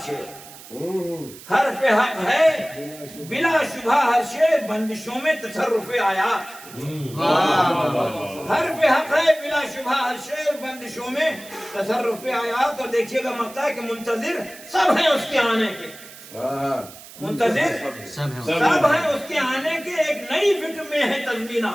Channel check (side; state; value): right; noise; hiss, 18 dB below the sound